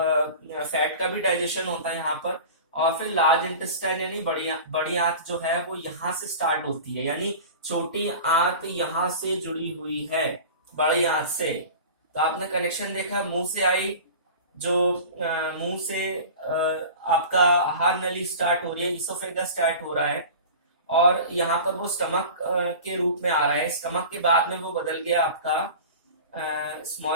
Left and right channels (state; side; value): inverted; both; correlation -0.36